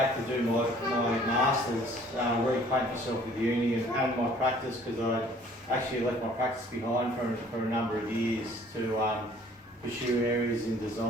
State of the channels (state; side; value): normal; both; correlation 0.55